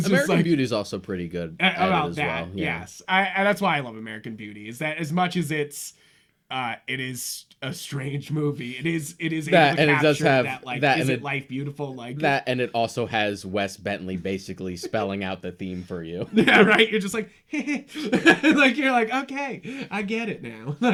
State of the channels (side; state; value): both; identical; correlation 1.00